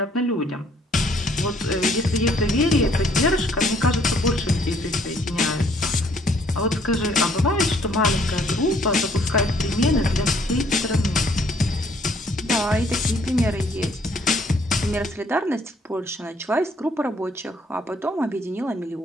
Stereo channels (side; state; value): both; normal; correlation 0.64